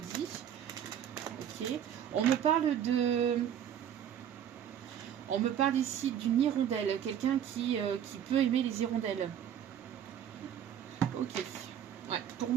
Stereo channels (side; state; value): left; quieter; 9.6 dB